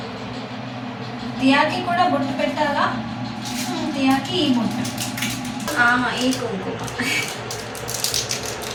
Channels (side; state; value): both; identical; correlation 1.00